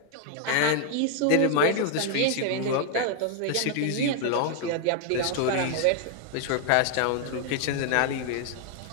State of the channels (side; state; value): both; different; correlation 0.00